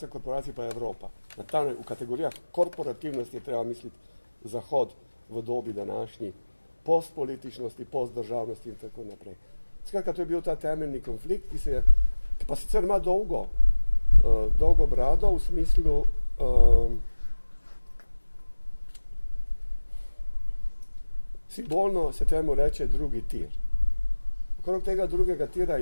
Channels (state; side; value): inverted; both; correlation -1.00